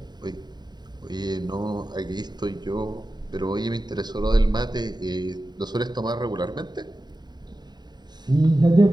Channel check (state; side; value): late; left; 0.20 ms